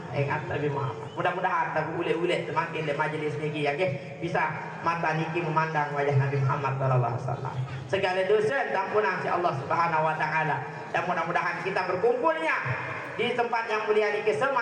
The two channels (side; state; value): both; identical; correlation 1.00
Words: ingat Nabi Muhammad. Mudah-mudahan tak ulet-ulet semakin le majlis ni ya ke bisa mata niki memandang wajah Nabi Muhammad sallallahu alaihi wasallam. Segala dosa ampunan si Allah Subhanahu wa taala. Dan mudah-mudahan kita berkumpulnya di tempat yang mulia ini